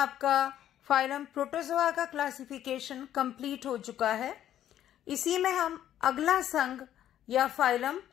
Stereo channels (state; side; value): quieter; right; 11.4 dB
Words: फाइलम प्रोटोजोआ का क्लासिफिकेशन कंप्लीट हो चुका है। इसी में हम अगला संघ या फाइलम